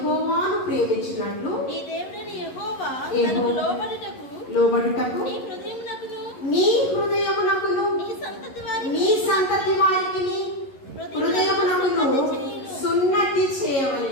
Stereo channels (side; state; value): right; late; 11 ms